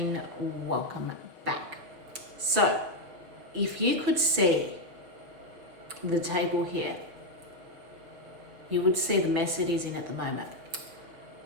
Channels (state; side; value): late; left; 6.2 ms